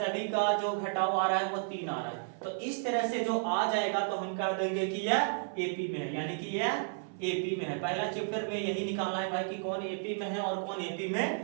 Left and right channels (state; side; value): silent; left; 56 dB below the other